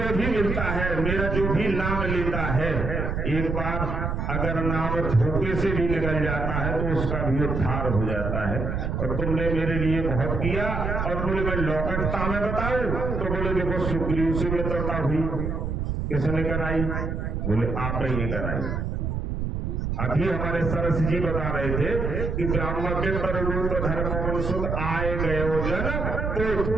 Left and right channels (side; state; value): right; noise; rumble, 2 dB below the sound